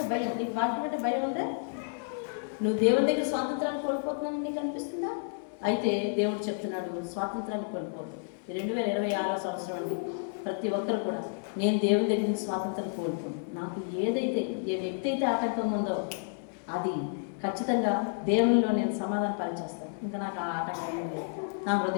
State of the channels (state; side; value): silent; right; 57 dB below the other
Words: భయం. నీకు వాక్యం అంటే భయం ఉందే? నువ్వు దేవుని దగ్గర స్వాతంత్రాన్ని కోల్పోతున్నానని నీకు అనిపిస్తుందా? అయితే దేవుడు చెప్తున్నాడు, స్వాతంత్రాన్ని కోల్పోదు. 2026 సంవత్సరం అండి. ప్రతి ఒక్కరు కూడా నేను దేవుని దగ్గర నుంచి స్వాతంత్రం కోల్పోను. నాకు ఏ వ్యక్తి అయితే ఆటంకం ఉందో అది ఖచ్చితంగా దేవునిలో నేను సమాధానం పరిచేస్తాను. ఇంకా నాకు ఆ ఆటంకం లేదు. నా